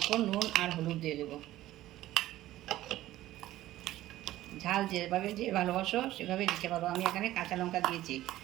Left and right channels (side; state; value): left; quieter; 14.9 dB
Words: নুন আর হলুদ দিয়ে দেব। ঝাল যেভাবে যে ভালোবাসো সেভাবে দিতে পারো। আমি এখানে কাঁচা লঙ্কা দিয়েছি,